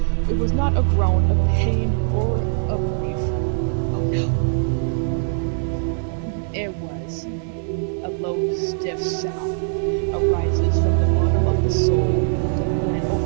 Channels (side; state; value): left; silent; 65 dB below the other